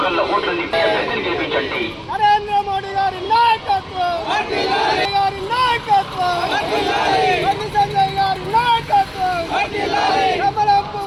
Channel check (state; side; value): identical; both; correlation 1.00